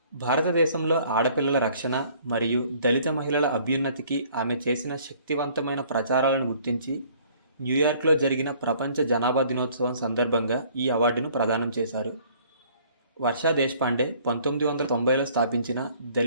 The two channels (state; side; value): inverted; both; correlation -0.57